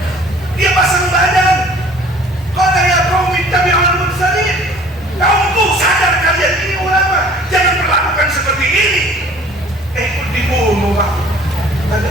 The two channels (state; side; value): normal; both; correlation 0.51